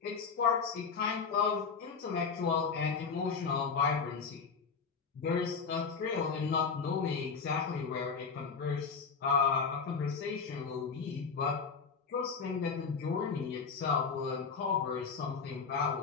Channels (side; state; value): right; quieter; 5.5 dB